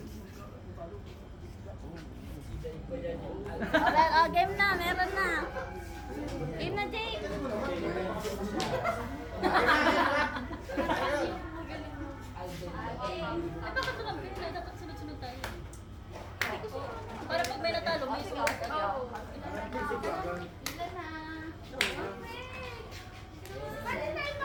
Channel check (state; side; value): identical; both; correlation 1.00